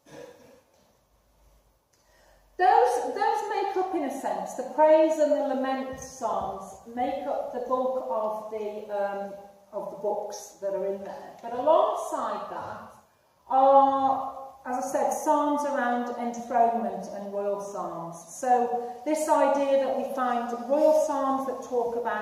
Those make up, in a sense, the praise and the lament psalms make up the bulk of the books that are in there. But alongside that are, as I said, psalms around enthronement and royal psalms. So this idea that we find royal psalms that talk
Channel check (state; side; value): identical; both; correlation 1.00